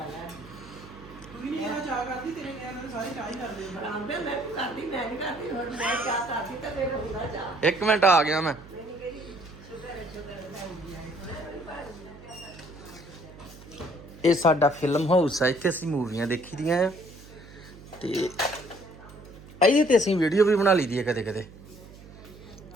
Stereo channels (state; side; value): noise; right; hum, 19 dB below the sound